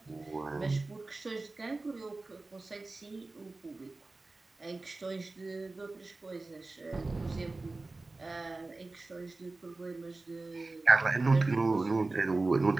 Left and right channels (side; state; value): left; quieter; 3.3 dB